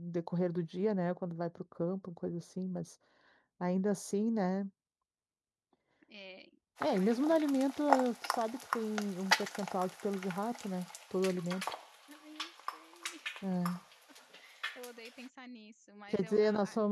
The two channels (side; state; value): both; identical; correlation 1.00